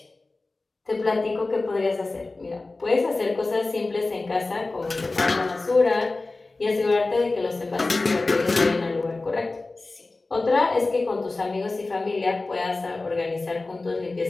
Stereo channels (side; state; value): right; quieter; 3.3 dB